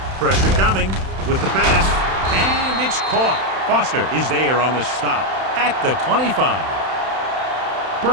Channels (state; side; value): late; left; 31 ms